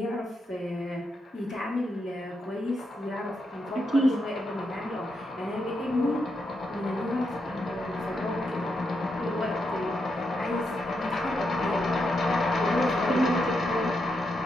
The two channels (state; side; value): normal; both; correlation 0.82